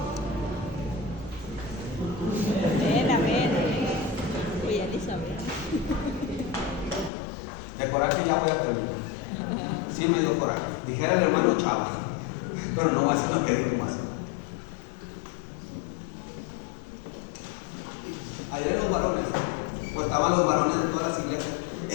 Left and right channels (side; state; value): right; drops out; at 7.1 s